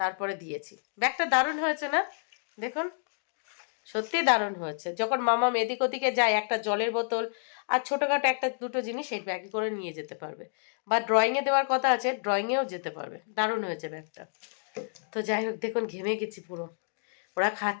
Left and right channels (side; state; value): right; silent; digital silence